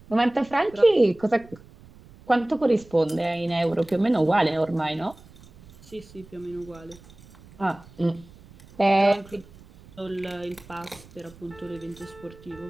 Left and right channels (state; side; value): noise; right; rumble, 23 dB below the sound